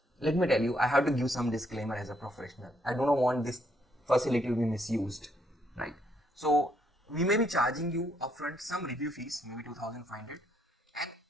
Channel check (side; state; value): both; normal; correlation 0.72